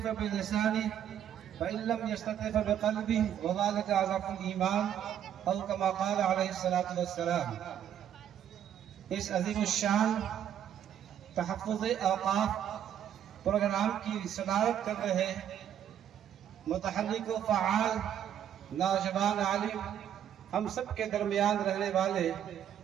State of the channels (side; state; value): left; quieter; 9.9 dB